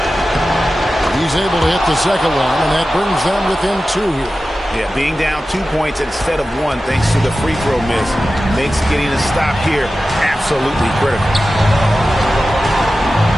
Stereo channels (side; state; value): both; normal; correlation 0.94